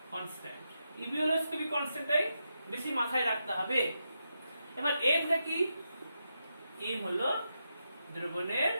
কনস্ট্যান্ট। ইবিউলোস্কোপিক কনস্ট্যান্টটাই বেশি মাথায় রাখতে হবে। এবার এমটা কি? এম হলো দ্রবণের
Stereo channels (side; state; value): both; inverted; correlation -0.86